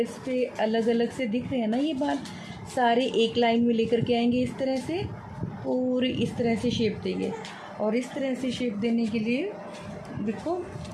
पे अलग अलग से दिख रहे हैं ना, ये बाल सारे एक लाइन में लेकर के आएंगे इस तरह से, पूरी इस तरह से शेप देंगे। और इस तरह से शेप देने के लिए देखो,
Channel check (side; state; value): both; identical; correlation 1.00